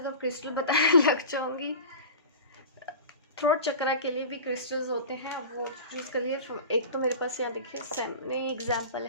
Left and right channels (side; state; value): both; inverted; correlation -0.34